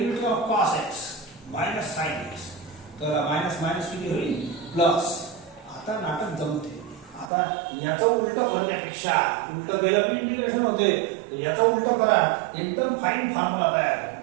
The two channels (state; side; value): drops out; left; at 7.3 s